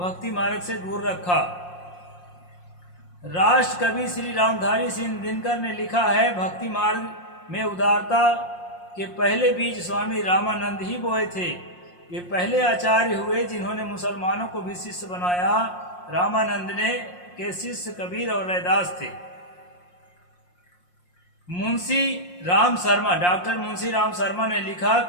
मार्ग से दूर रखा। राष्ट्र कवि श्री रामधारी सिंह दिनकर ने लिखा है, भक्ति मार्ग में उदारता के पहले बीज स्वामी रामानंद ही बोए थे। वे पहले आचार्य हुए जिन्होंने मुसलमानों को भी शिष्य बनाया। रामानंद ने के शिष्य कबीर और रैदास थे। मुंशी राम शर्मा, डॉक्टर मुंशी राम शर्मा ने लिखा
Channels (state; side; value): late; right; 5.6 ms